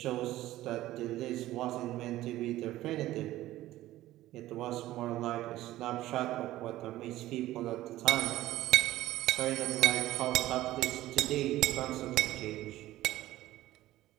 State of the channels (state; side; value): quieter; left; 15.5 dB